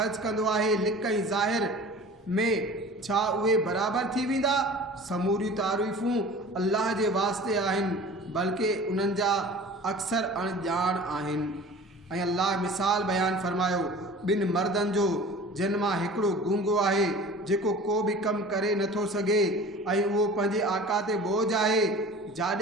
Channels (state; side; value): normal; both; correlation 0.42